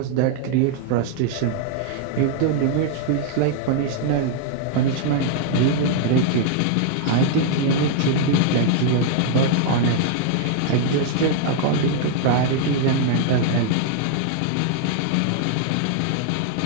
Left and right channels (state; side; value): different; both; correlation 0.00